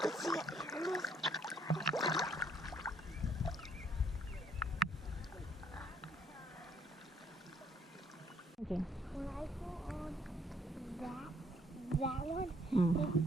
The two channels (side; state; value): both; normal; correlation 0.66